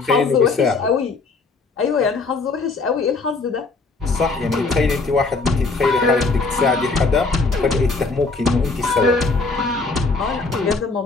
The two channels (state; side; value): quieter; right; 3.8 dB